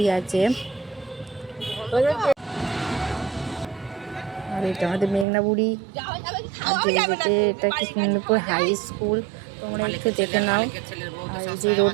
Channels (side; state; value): left; drops out; at 5.2 s